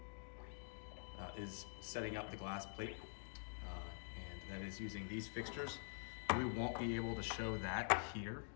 is setting up the glass plate. And that is using these fixtures. We won't be able to show that here,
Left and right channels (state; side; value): silent; right; digital silence